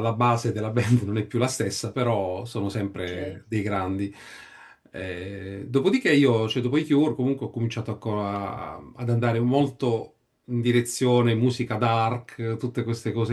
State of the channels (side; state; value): both; identical; correlation 1.00